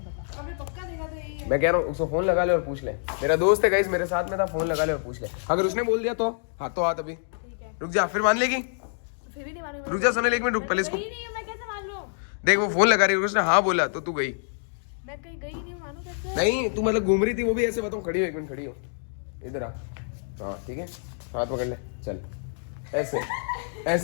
पता। आपने पक्का देखा तो यही है। मैं कह रहा हूँ उसको फोन लगा ले और पूछ ले, मेरा दोस्त है गाइस मेरे साथ में था, फोन लगा ले और पूछ ले। अगर उसने बोल दिया तो हाथ तो हाथ, अभी ठीक है। रुक जा, फिर मान लेगी? फिर भी नहीं मालूम। रुक जा सोनल, एक मिनट रुक पहले इसको। गई नहीं हूँ, मैं कैसे मान लूँ? देख वो फोन लगा रही है, उसने हाँ बोला तो तू गई मैं कहीं गई नहीं हूँ, मानू कैसे? नहीं? तू मतलब घूम रही थी वो भी ऐसे बताऊँ? खड़ी हो, एक मिनट खड़ी हो, इधर आ। हाँ ठीक है, हाथ पकड़ ले, चल ऐसे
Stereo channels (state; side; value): silent; right; digital silence